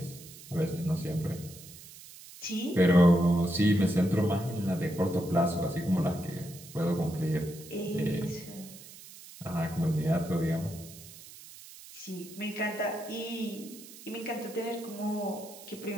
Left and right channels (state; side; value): noise; right; hiss, 17 dB below the sound